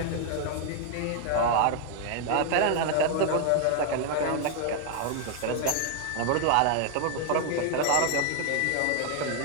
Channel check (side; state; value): both; different; correlation 0.00